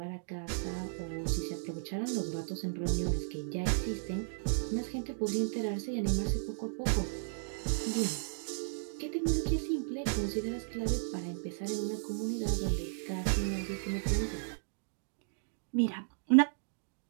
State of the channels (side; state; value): left; silent; digital silence